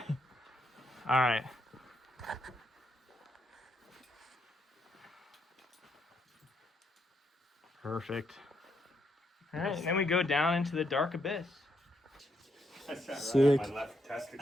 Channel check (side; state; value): both; normal; correlation 0.77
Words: All right. Perfect. All right, and then we go down into the dark abyss. That's right Sick. on my left